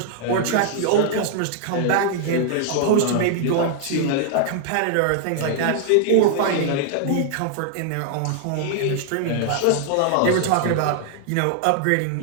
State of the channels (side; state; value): both; different; correlation -0.01